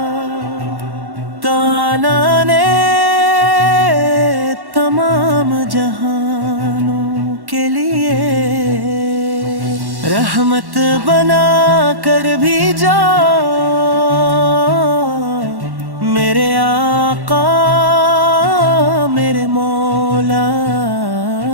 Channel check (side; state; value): left; late; 1.1 ms